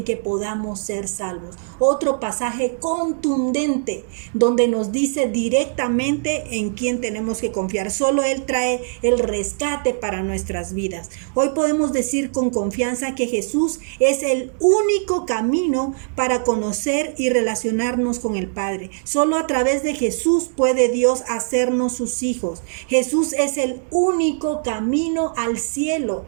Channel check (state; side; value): silent; left; digital silence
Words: que podamos ser salvos. Otro pasaje contundente donde nos dice directamente en quién tenemos que confiar. Solo Él trae el rescate para nuestras vidas. Hoy podemos decir con confianza que Jesús es el único camino para conocer y relacionarnos con el Padre. Solo a través de Jesús puede Dios hacernos sus hijos. Jesús es el único camino al cielo.